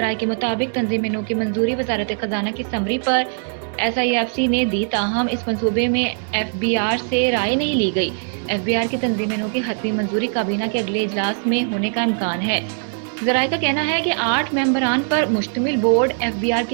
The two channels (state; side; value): silent; left; digital silence